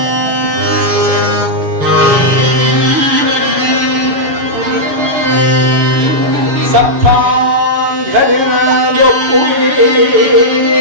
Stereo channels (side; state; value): left; late; 7.1 ms